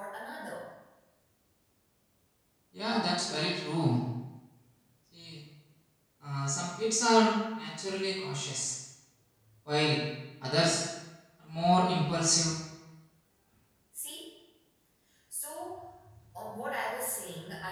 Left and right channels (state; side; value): identical; both; correlation 1.00